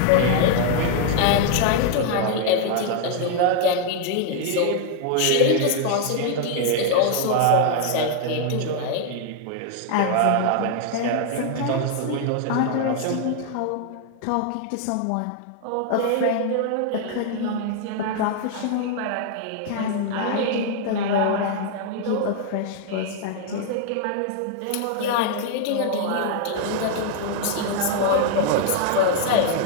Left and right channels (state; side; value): different; both; correlation 0.00